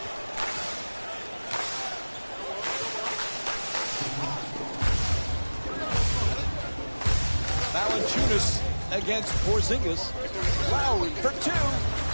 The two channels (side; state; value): both; inverted; correlation -1.00